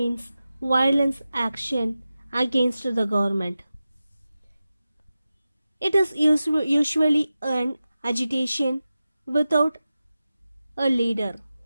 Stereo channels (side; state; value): both; inverted; correlation -0.94